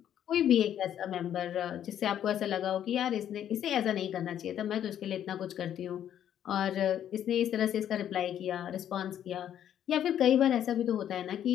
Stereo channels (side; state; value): right; quieter; 10.3 dB